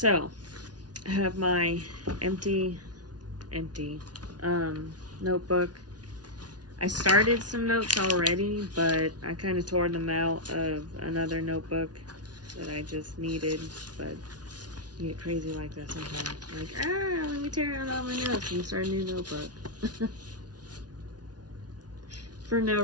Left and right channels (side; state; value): left; late; 0.69 ms